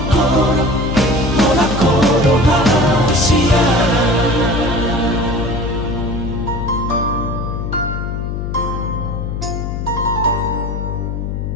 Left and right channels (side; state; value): left; noise; hum, 4 dB below the sound